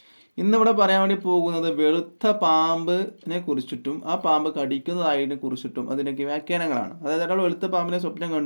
ഇന്നിവിടെ പറയാൻ വേണ്ടി പോകുന്നത് വെളുത്ത പാമ്പിനെ കുറിച്ചിട്ടും ആ പാമ്പ് കടിക്കുന്നതായതിനെ കുറിച്ചിട്ടും അതിനൊക്കെ വ്യാഖ്യാനങ്ങളാണ്. അതായത് ഒരാൾ വെളുത്ത പാമ്പിനെ സ്വപ്നം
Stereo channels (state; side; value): inverted; both; correlation -1.00